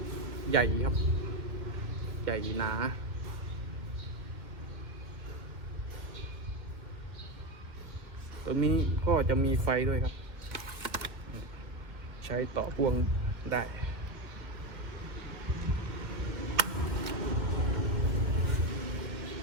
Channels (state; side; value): late; left; 2.3 ms